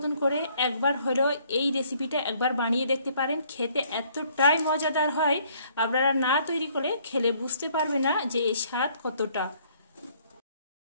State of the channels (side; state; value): both; inverted; correlation -0.63